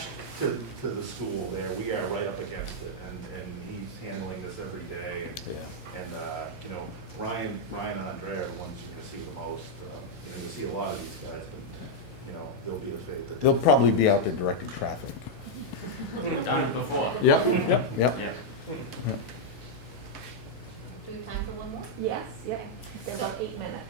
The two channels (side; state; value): both; normal; correlation -0.04